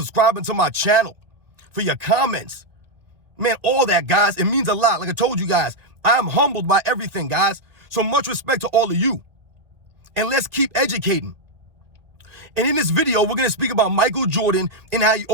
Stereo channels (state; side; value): late; left; 2.0 ms